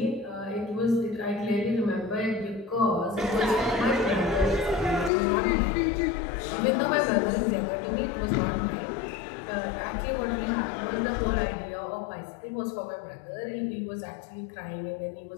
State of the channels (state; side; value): drops out; right; at 5.1 s